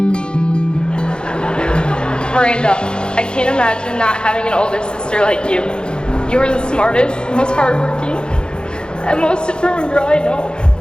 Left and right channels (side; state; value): right; late; 0.049 ms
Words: I can't imagine not having an older sister like you. You are the smartest, most hardworking, and most determined girl I know.